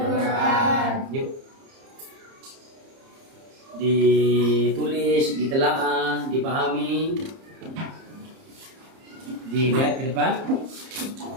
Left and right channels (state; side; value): late; left; 30 ms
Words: Yuk, ditulis, ditelaah, dipahami, dilihat ke depan.